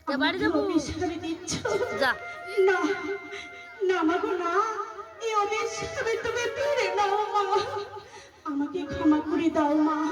অভিশাপ দিচ্ছ। না না মাগো না, এই অভিশাপে তুমি ফিরে নাও মা, আমাকে ক্ষমা করে দাও মা,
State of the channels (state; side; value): identical; both; correlation 1.00